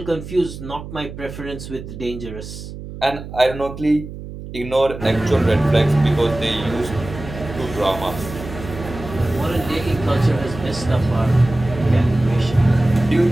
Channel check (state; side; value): noise; right; hum, 11 dB below the sound